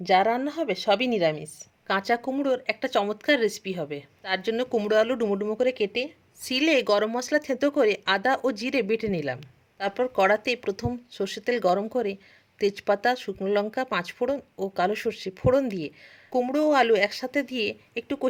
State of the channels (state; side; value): identical; both; correlation 1.00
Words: যা রান্না হবে সবই নিরামিষ। কাঁচা কুমড়োর একটা চমৎকার রেসিপি হবে। তার জন্য কুমড়ো আলু ডুমো ডুমো করে কেটে শিলে গরম মশলা থেঁতো করে আদা ও জিরে বেটে নিলাম। তারপর কড়াতে প্রথম সর্ষের তেল গরম করে তেজপাতা, শুকনো লঙ্কা, পাঁচফোড়ন ও কালো সর্ষে ফোড়ন দিয়ে কুমড়ো ও আলু একসাথে দিয়ে একটু